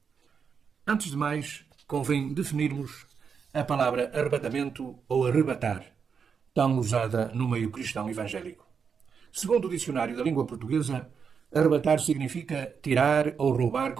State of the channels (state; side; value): quieter; left; 6.3 dB